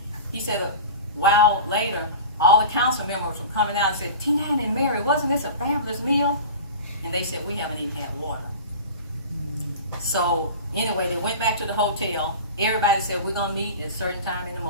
He said a while later, all the council members were coming out and said, T9 and Mary, wasn't this a fabulous meal? And they said, we haven't even had water. So anyway, they went back to the hotel. Everybody said, we're going to meet at a certain time in the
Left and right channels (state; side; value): inverted; both; correlation -0.34